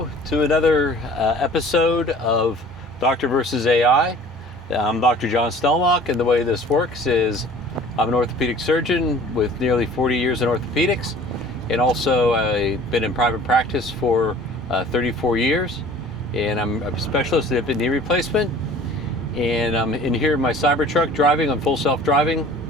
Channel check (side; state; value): both; normal; correlation 0.48